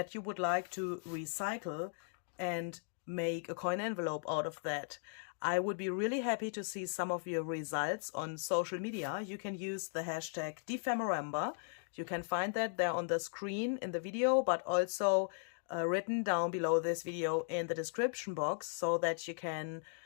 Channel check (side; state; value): right; silent; digital silence